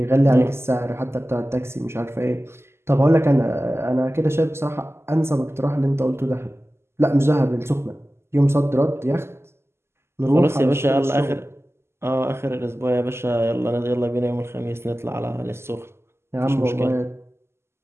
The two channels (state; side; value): late; left; 0.12 ms